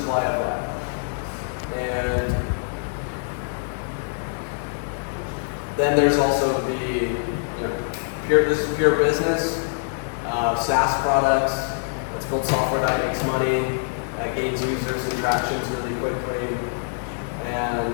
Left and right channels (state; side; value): silent; right; 61 dB below the other